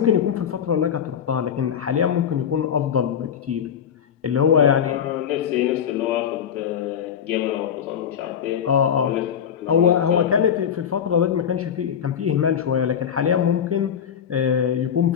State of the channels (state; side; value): quieter; right; 8.4 dB